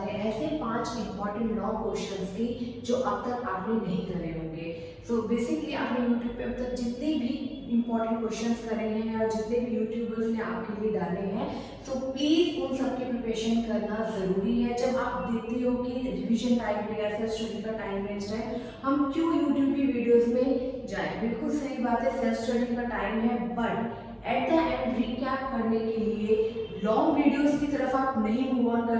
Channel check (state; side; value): identical; both; correlation 1.00